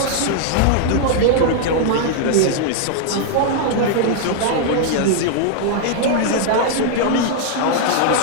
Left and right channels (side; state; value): both; different; correlation -0.01